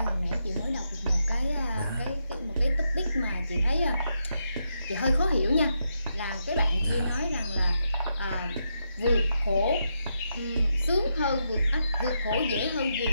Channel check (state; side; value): inverted; both; correlation -0.82